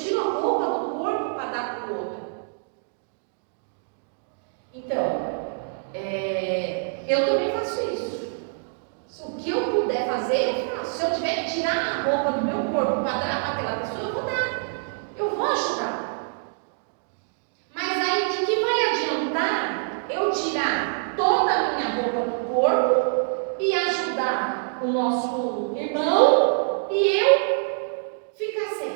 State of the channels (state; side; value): silent; left; digital silence